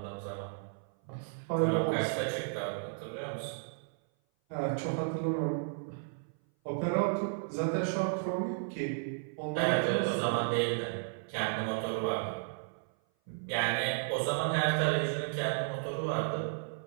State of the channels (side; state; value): left; silent; 55 dB below the other